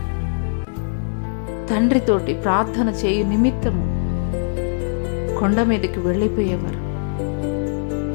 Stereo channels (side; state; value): right; silent; digital silence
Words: తండ్రితోటి ప్రార్థన చేయు నిమిత్తము కొండ మీదకి వెళ్ళిపోయేవారు.